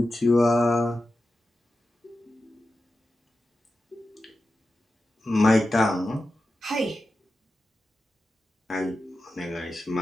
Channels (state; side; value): normal; both; correlation 0.92